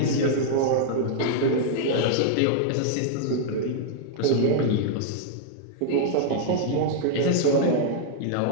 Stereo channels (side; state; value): both; different; correlation -0.01